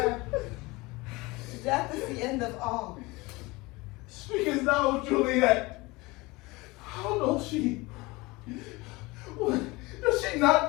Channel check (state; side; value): quieter; right; 23.0 dB